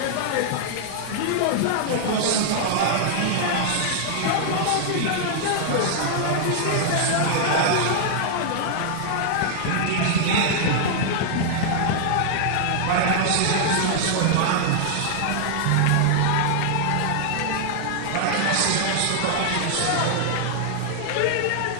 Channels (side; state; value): both; different; correlation -0.01